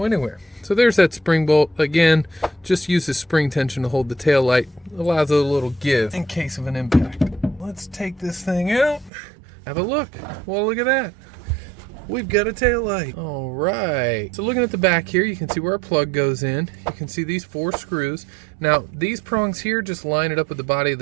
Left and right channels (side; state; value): left; drops out; at 9.1 s